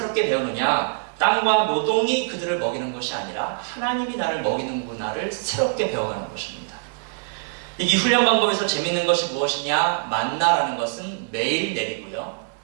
배우느냐? 땅과 노동이 그들을 먹이는 것이 아니라 하나님이 나를 먹이는구나를 새롭게 배워가는 것입니다. 이 훈련 방법에서 재밌는 것이 무엇이냐? 만나라는 것은 매일 내리고요.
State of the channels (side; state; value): left; silent; 56 dB below the other